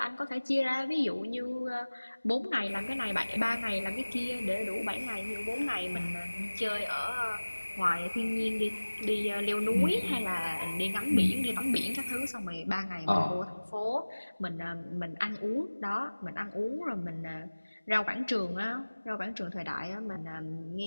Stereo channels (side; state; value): both; inverted; correlation -1.00